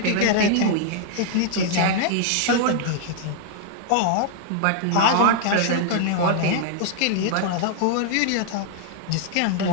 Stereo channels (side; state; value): both; different; correlation 0.00